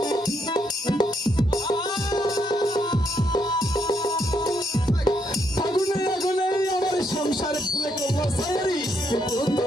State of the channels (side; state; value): both; normal; correlation 0.76